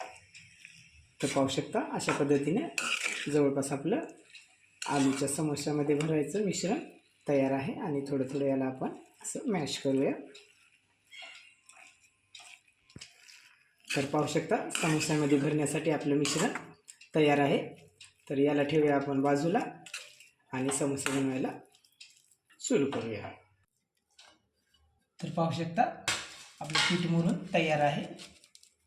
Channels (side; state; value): both; identical; correlation 1.00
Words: तर पाहू शकता अशा पद्धतीने जवळपास आपलं आलूच्या समोश्यामध्ये भरायचं मिश्रण तयार आहे. आणि थोडं थोडं याला आपण असं मॅश करूया. तर पाहू शकता समोस्यामध्ये भरण्यासाठी आपलं मिश्रण तयार आहे. तर याला ठेवूया आपण बाजूला आणि समोसे बनवायला सुरू करूया. तर पाहू शकता आपलं पीठ मुरून तयार आहे.